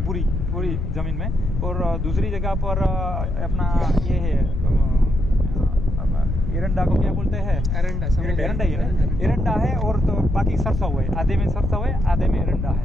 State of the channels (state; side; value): noise; left; rumble, 2 dB below the sound